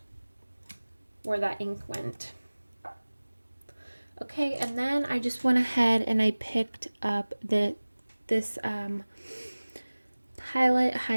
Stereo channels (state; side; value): inverted; both; correlation -1.00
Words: where that ink went. Okay, and then I just went ahead and I picked up this Pilot